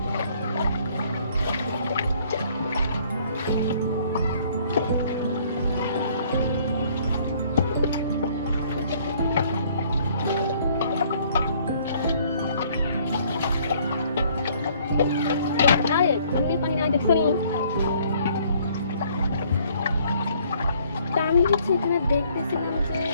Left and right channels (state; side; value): inverted; both; correlation -0.61